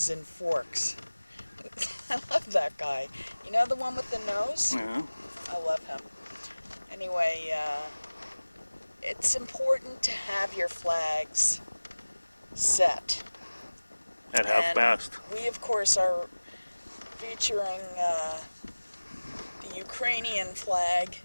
and forks. I love that guy. You know the one with the nose? Yeah. I love him. Anyway, it's important to have your flags set. At half past. We, of course, are featuring the Ukrainian flag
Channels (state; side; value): inverted; both; correlation -1.00